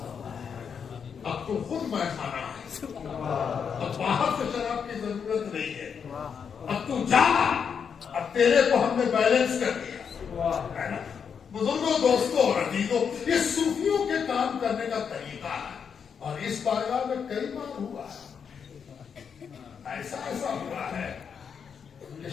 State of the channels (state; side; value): quieter; right; 6.8 dB